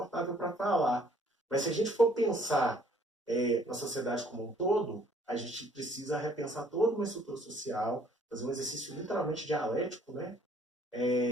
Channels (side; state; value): both; normal; correlation 0.60